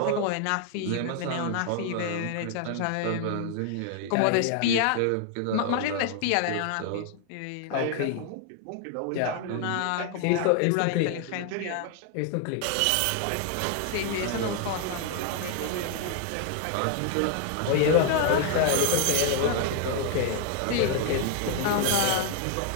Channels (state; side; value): different; both; correlation 0.00